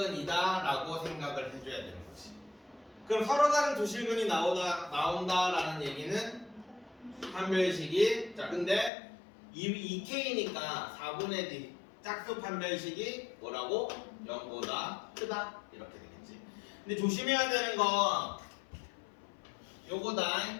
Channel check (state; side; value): drops out; right; at 8.9 s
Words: 라고 생각을 해줘야 되는 거지. 그럼 서로 다른 두 실근이 나온다라는 얘기는 판별식이, 자 근데 2k니까 4분의 d 짝수 판별식이 뭐라고? 0보다 크다 이렇게 되겠지. 근데 조심해야 되는 건 요거다.